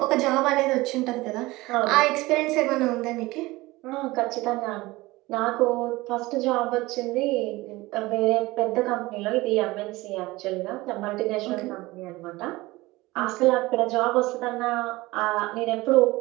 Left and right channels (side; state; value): left; quieter; 20.3 dB